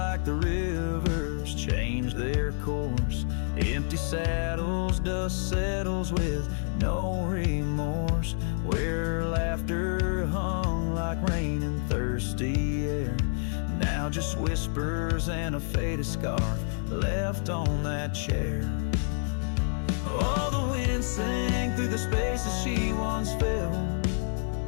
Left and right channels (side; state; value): right; silent; 59 dB below the other